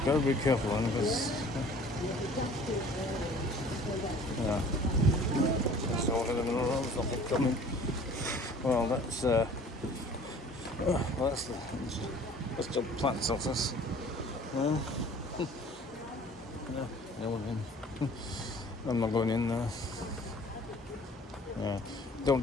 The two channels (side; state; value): both; normal; correlation 0.49